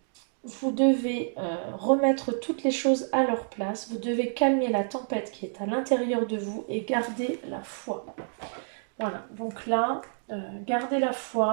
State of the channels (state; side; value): silent; left; digital silence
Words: devez remettre toutes les choses à leur place. Vous devez calmer la tempête qui est à l'intérieur de vous et garder la foi. Voilà, donc là, gardez la